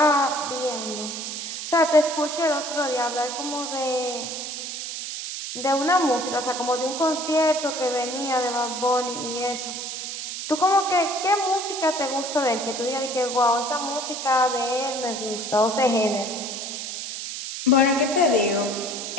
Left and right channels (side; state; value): right; noise; hiss, 6 dB below the sound